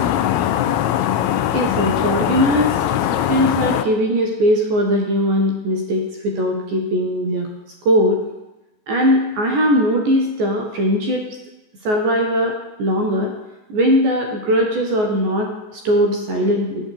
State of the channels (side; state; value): left; late; 14 ms